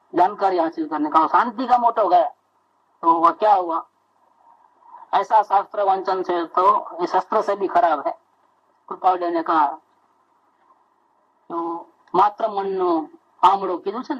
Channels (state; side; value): identical; both; correlation 1.00